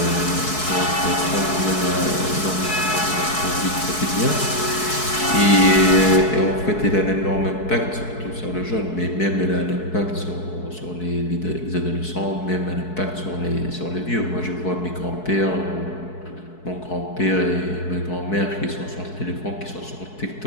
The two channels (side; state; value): right; late; 4.6 ms